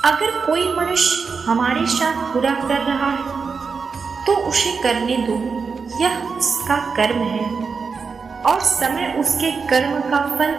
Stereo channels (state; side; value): quieter; left; 5.2 dB